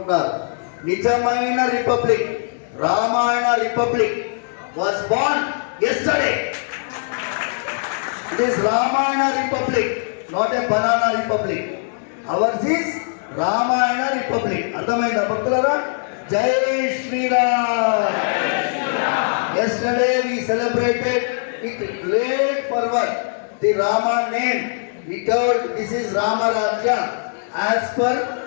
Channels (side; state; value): right; silent; digital silence